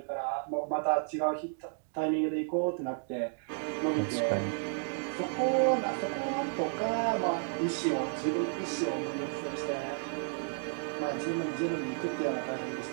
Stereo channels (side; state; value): left; silent; 56 dB below the other